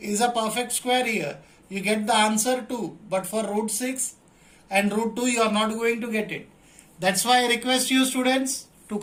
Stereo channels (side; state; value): both; identical; correlation 1.00